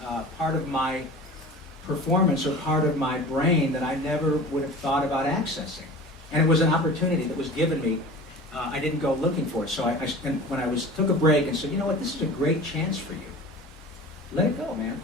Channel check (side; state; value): both; normal; correlation 0.38